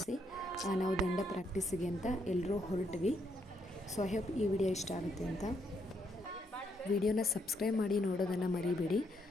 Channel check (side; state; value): both; normal; correlation 0.75